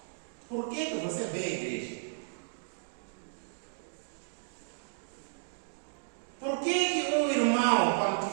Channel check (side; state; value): left; silent; digital silence